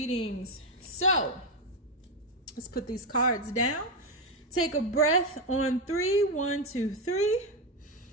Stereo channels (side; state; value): both; normal; correlation 0.08